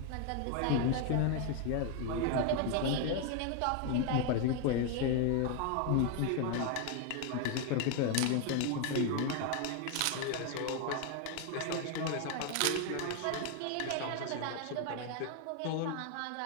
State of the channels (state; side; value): different; both; correlation 0.01